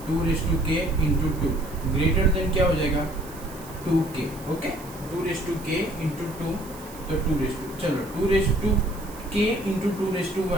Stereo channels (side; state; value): right; noise; hiss, 19 dB below the sound